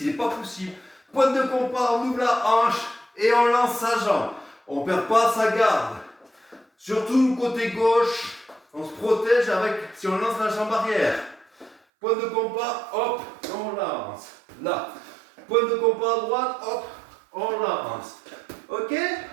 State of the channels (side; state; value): left; drops out; at 11.8 s